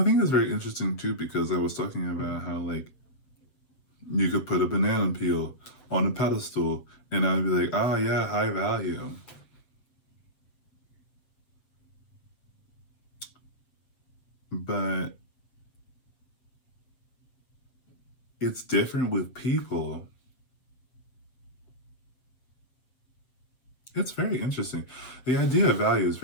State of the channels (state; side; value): late; right; 7.8 ms